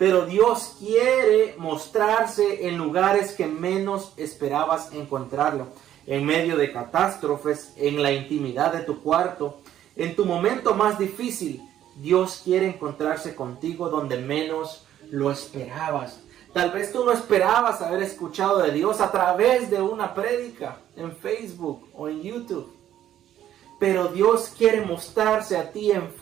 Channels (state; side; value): quieter; left; 11.5 dB